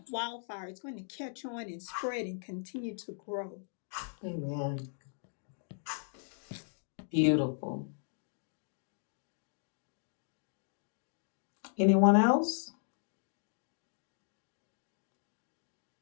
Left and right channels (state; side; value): silent; right; digital silence